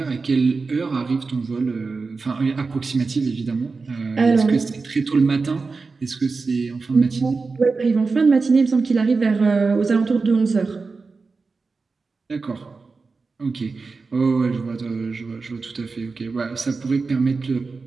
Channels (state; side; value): quieter; left; 4.3 dB